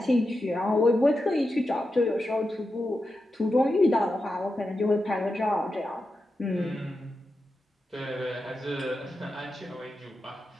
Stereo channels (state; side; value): normal; both; correlation 0.89